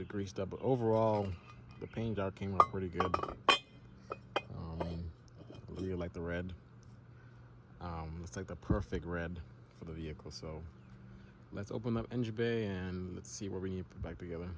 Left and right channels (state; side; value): identical; both; correlation 1.00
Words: greased up. But overall, the paint job came out pretty good. I really like the red. It's like the perfect red for the vehicle. So let's open up engine bay and let's see what we need to put back together.